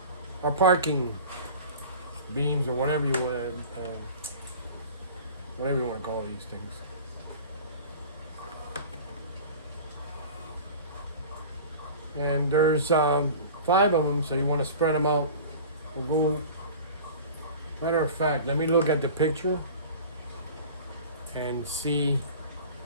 our parking beams or whatever you want to call these things. And there's 5 of them, so you want to spread them out. We'll go. Matter of fact, let me look at the picture and see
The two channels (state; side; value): inverted; both; correlation -0.39